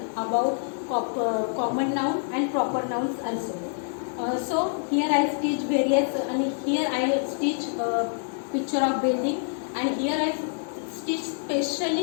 about common noun and proper nouns also. So here I stitch various, and here I stitch picture of building, and here I stitch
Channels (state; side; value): silent; right; digital silence